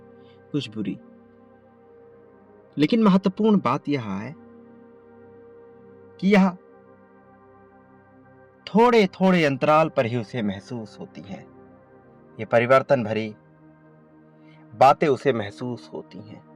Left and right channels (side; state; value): both; identical; correlation 1.00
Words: कुछ बुरी। लेकिन महत्वपूर्ण बात यह है कि यह थोड़े थोड़े अंतराल पर ही उसे महसूस होती है। ये परिवर्तन भरी बातें उसे महसूस होती हैं।